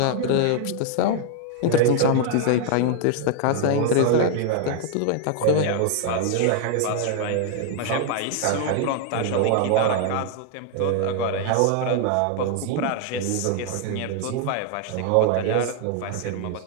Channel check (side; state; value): both; different; correlation 0.00